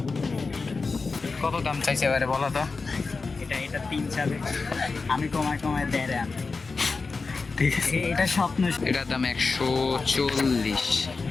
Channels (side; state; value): right; quieter; 4.2 dB